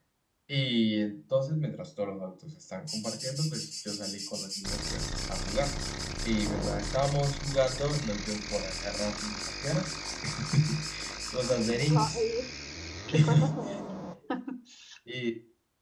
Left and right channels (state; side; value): identical; both; correlation 1.00